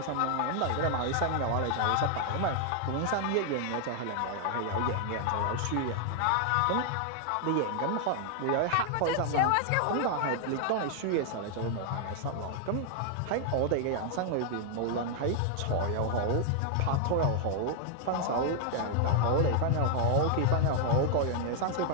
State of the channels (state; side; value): different; both; correlation 0.00